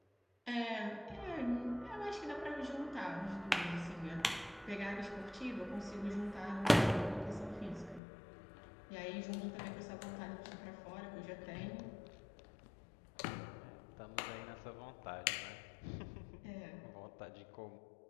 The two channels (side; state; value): right; drops out; at 8.0 s